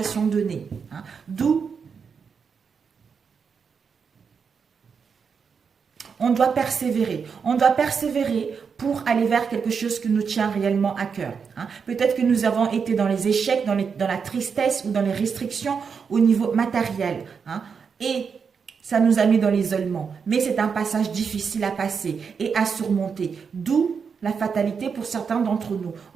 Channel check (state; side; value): quieter; left; 6.1 dB